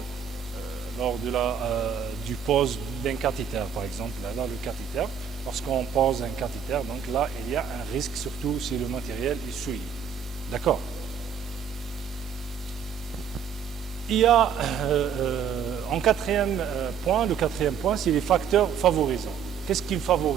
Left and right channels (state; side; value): quieter; left; 7.7 dB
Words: du pose d'un cathéter, par exemple. Là, le cathéter, lorsqu'on pose un cathéter, donc là il y a un risque, surtout si le matériel est souillé. D'accord? Il y a en quatrième point, le quatrième point, c'est les facteurs favorisants. Qu'est-ce qui